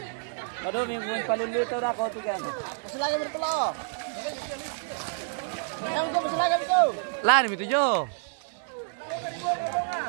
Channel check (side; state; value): left; silent; digital silence